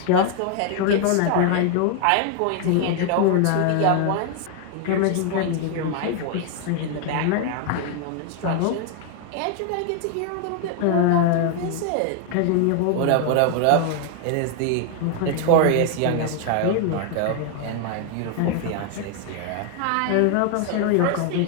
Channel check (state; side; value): different; both; correlation 0.00